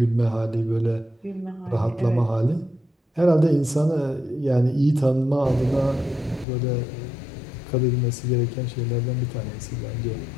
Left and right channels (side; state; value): right; drops out; at 6.5 s